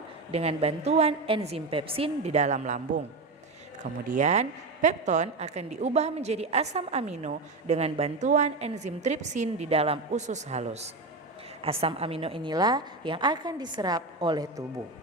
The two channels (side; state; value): left; quieter; 3.4 dB